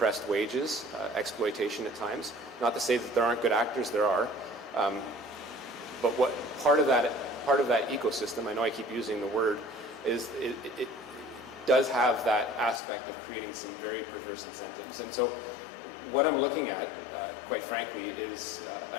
wages, exploitation at times. Not to say that there aren't good actors, there are. But what part of that ecosystem, I know I keep using the word, is it does have that aspect of creating some very perverse incentives. And so what I'm looking at, quite frankly, is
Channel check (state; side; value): drops out; right; at 12.8 s